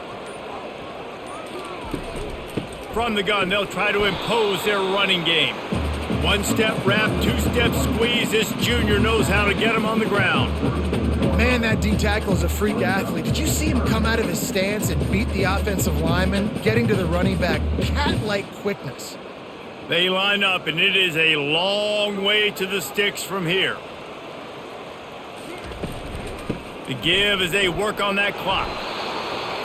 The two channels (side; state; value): both; identical; correlation 1.00